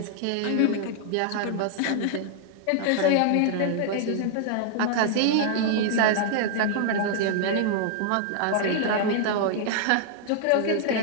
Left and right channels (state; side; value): different; both; correlation -0.01